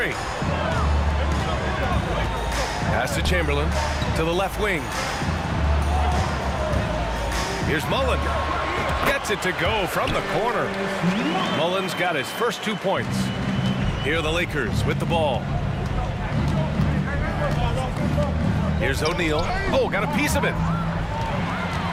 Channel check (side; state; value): both; identical; correlation 1.00